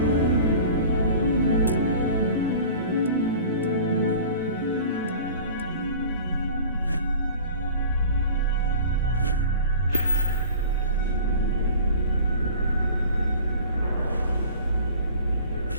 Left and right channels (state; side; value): inverted; both; correlation -0.42